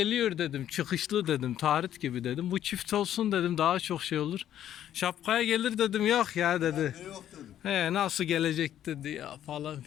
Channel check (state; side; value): quieter; right; 11.1 dB